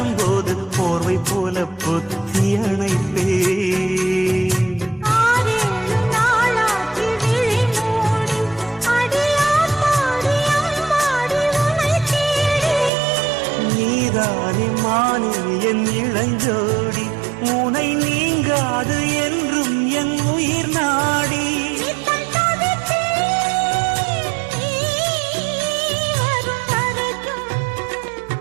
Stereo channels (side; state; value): left; drops out; at 12.9 s